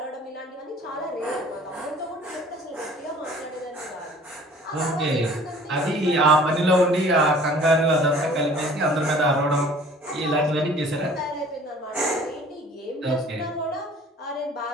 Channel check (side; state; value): both; normal; correlation 0.50